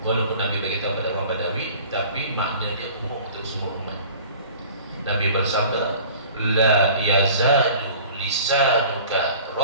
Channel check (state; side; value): inverted; both; correlation -0.45